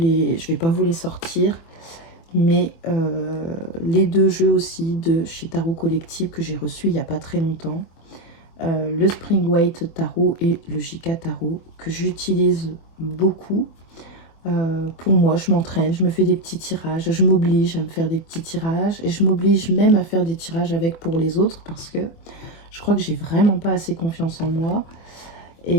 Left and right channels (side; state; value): right; late; 24 ms